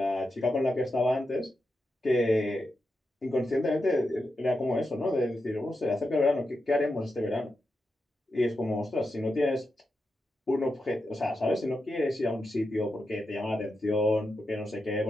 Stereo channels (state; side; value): normal; both; correlation 0.88